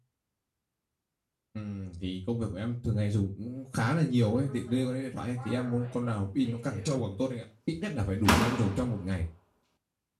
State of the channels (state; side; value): identical; both; correlation 1.00